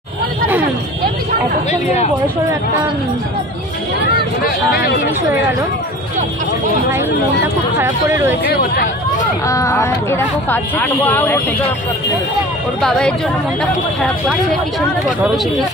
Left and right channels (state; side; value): normal; both; correlation 0.41